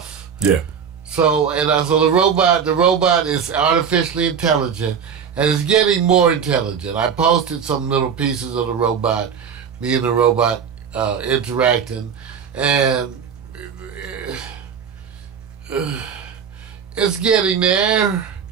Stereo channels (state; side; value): quieter; left; 7.1 dB